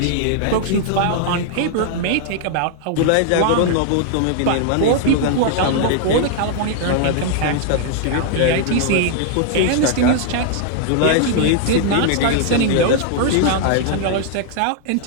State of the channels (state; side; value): different; both; correlation 0.00